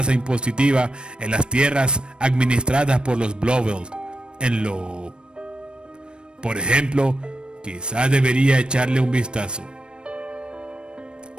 impositiva en las tierras administradas por los Blobel. Por ejemplo, quizá debería echarle un vistazo.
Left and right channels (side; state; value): left; late; 0.054 ms